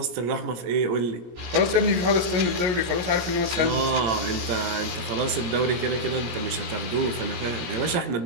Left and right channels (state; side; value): late; left; 17 ms